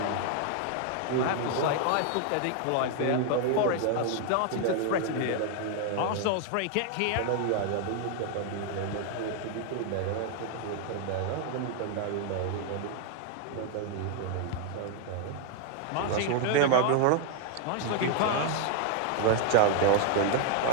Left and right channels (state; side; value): different; both; correlation 0.00